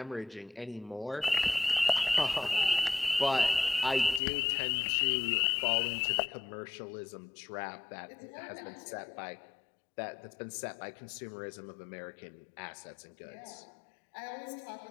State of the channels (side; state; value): right; drops out; at 4.2 s